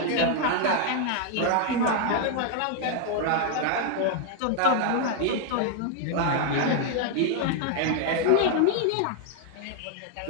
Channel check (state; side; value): different; both; correlation 0.00